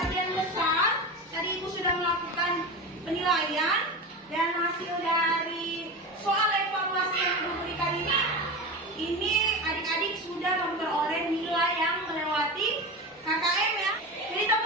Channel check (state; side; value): normal; both; correlation 0.25